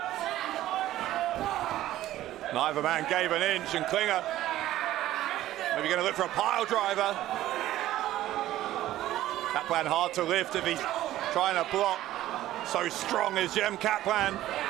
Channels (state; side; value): quieter; left; 14.2 dB